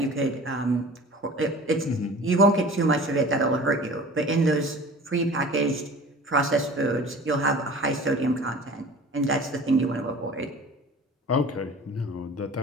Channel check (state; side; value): normal; both; correlation 0.42